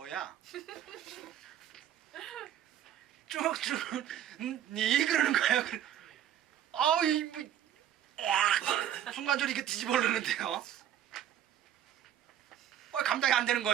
쭉쭉 니 그러는 거야. 아우 뭐, 순간적으로 이게 뒤집어 흐르는데요. 감당이 안 되는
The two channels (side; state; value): left; quieter; 10.7 dB